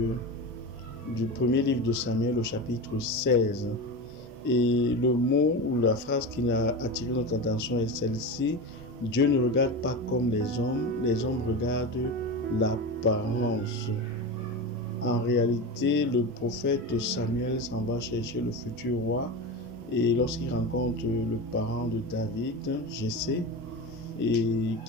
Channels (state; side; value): normal; both; correlation 0.23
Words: premier livre de Samuel au chapitre 16. Et le mot ou la phrase qui a attiré notre attention est celle-ci: Dieu ne regarde pas comme les hommes regardent l'apparence. En réalité, le prophète Samuel s'en va chercher le futur roi, et lorsqu'il rencontre le parent de David, Jessé, et